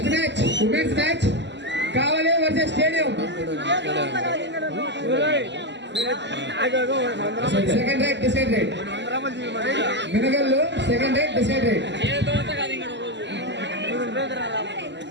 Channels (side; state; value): left; late; 0.51 ms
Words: match women's match Kavali versus stadium. Second raid decide raid Minagallu second raid decide raid.